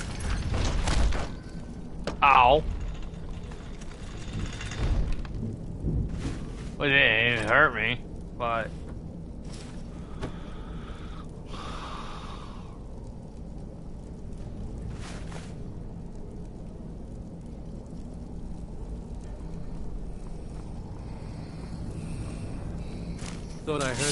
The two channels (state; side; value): identical; both; correlation 1.00